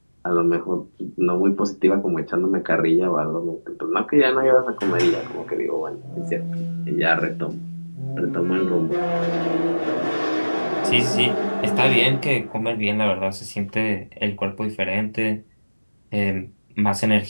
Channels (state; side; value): inverted; both; correlation -1.00